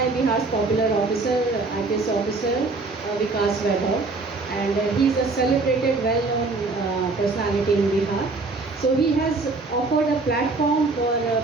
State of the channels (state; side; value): quieter; left; 3.7 dB